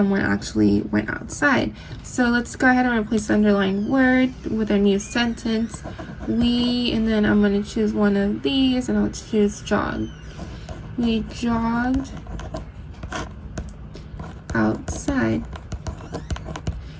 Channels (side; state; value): both; identical; correlation 1.00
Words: actually went outside. So let's go ahead and replace the underlined word with a new sentence. We, and then I'm going to choose one of these, and I'll choose jog. We jogged outside.